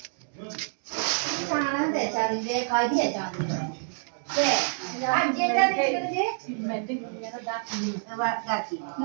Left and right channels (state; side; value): silent; left; digital silence